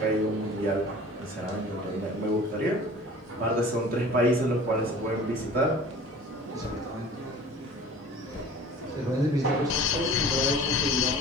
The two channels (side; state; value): both; normal; correlation 0.43